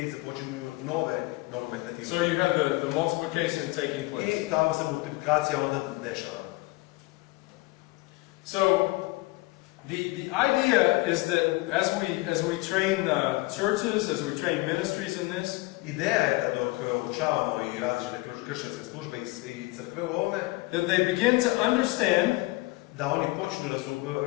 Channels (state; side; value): quieter; right; 22.0 dB